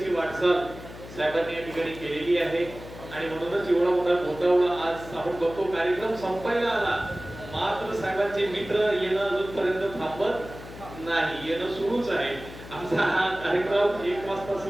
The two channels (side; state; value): left; noise; hum, 15 dB below the sound